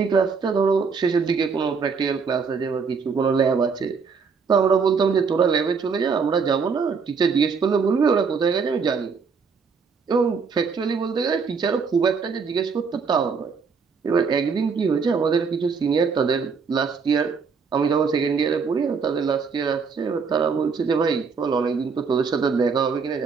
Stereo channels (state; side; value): quieter; left; 5.4 dB